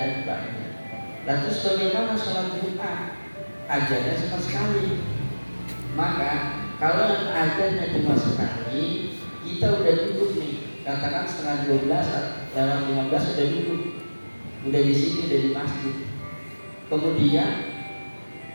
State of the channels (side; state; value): both; inverted; correlation -1.00